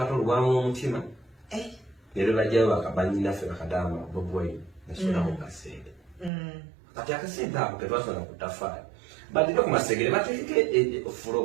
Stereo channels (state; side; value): drops out; left; at 6.3 s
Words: lwamu omutima nero bajjayo banyinaffe bakadama bobwai nasondaku kasente kati akasente ako ketwasonda ku tafaali badire ku masengere bateeke